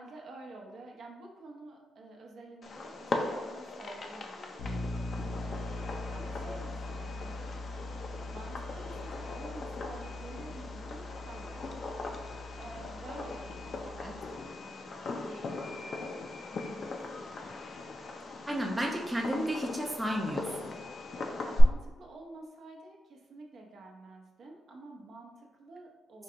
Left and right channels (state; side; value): normal; both; correlation 0.92